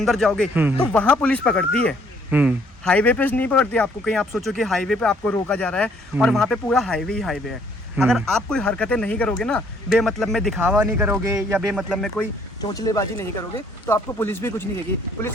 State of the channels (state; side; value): normal; both; correlation 0.64